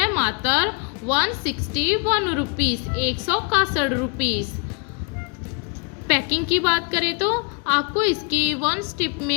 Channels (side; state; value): right; quieter; 35.5 dB